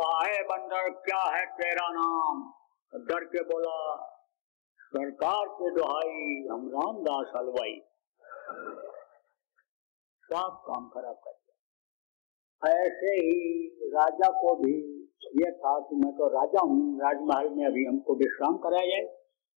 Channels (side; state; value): right; quieter; 34.7 dB